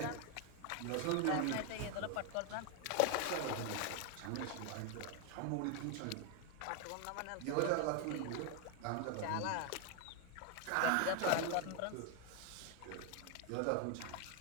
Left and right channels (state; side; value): different; both; correlation 0.00